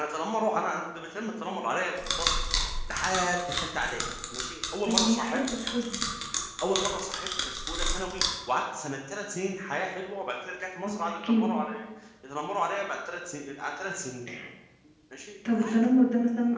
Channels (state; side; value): identical; both; correlation 1.00